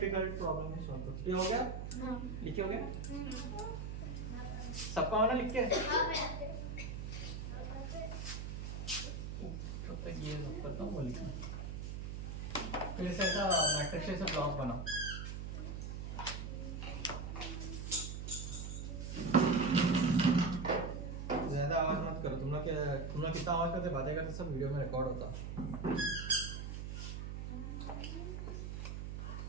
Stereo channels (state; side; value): noise; right; hum, 5 dB below the sound